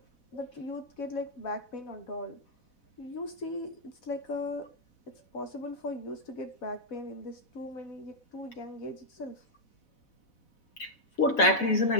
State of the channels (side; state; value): right; late; 4.1 ms